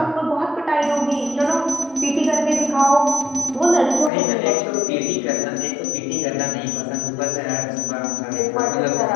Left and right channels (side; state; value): right; drops out; at 4.1 s